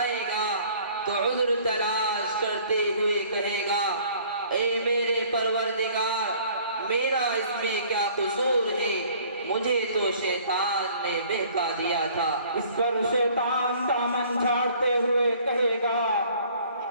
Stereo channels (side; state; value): both; inverted; correlation -0.54